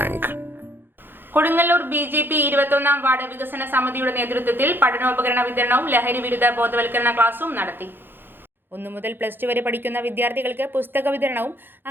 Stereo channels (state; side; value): late; left; 0.099 ms